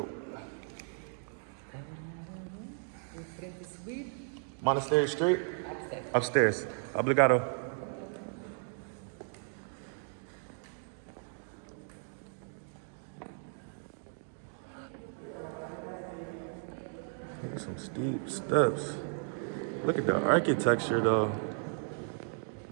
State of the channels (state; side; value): silent; left; 54 dB below the other